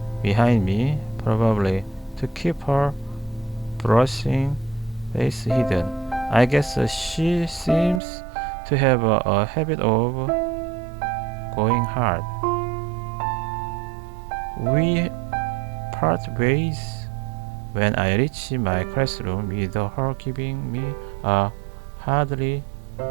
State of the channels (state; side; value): drops out; left; at 8.0 s